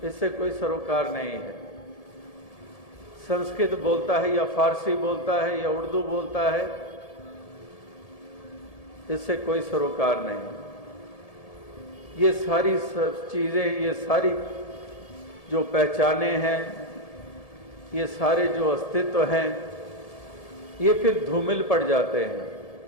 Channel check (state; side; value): late; right; 1.7 ms